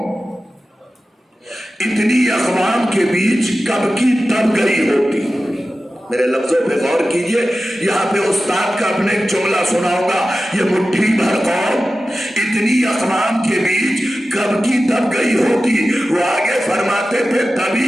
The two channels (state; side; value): normal; both; correlation 0.94